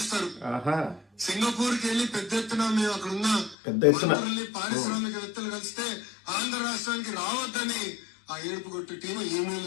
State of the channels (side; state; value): right; drops out; at 3.6 s